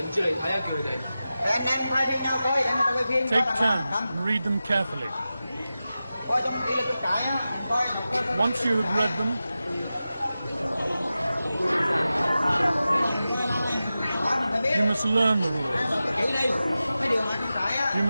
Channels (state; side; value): inverted; both; correlation -0.94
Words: Take turns and read them carefully. Once you have read them, you must learn the rules. You